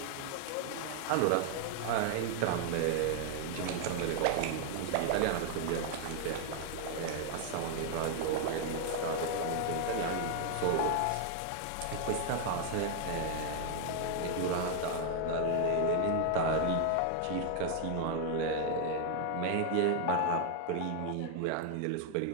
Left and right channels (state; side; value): different; both; correlation 0.00